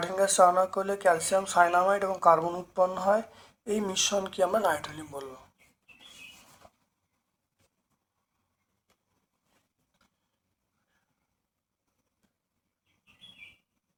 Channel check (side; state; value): both; identical; correlation 1.00